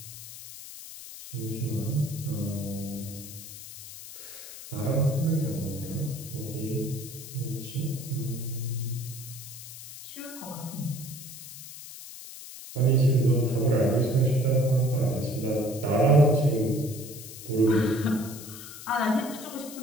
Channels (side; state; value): left; noise; hiss, 13 dB below the sound